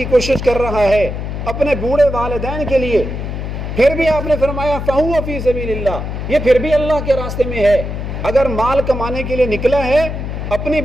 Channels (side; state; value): left; noise; hum, 5 dB below the sound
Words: کوشش کر رہا ہے اپنے بوڑھے والدین کے لیے، پھر بھی آپ نے فرمایا فہو فی سبیل اللہ، یہ پھر بھی اللہ کے راستے میں ہے. اگر مال کمانے کے لیے نکلا ہے اپنی